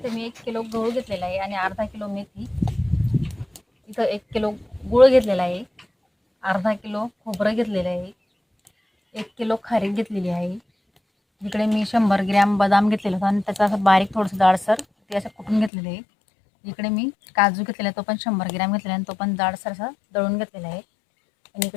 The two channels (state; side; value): drops out; right; at 15.7 s